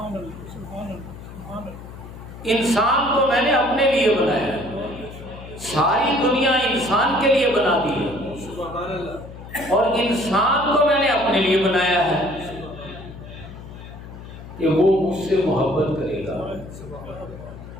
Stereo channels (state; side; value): noise; left; hum, 14 dB below the sound